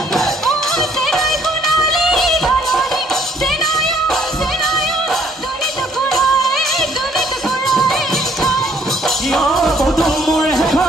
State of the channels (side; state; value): both; normal; correlation 0.63